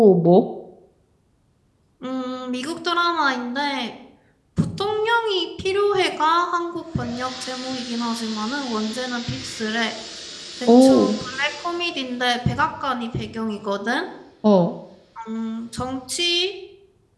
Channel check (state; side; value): identical; both; correlation 1.00